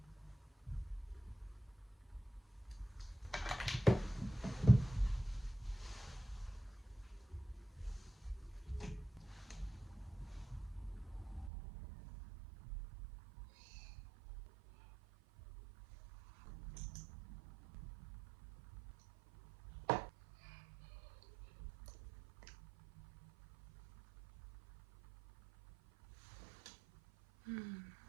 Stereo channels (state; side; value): drops out; left; at 11.5 s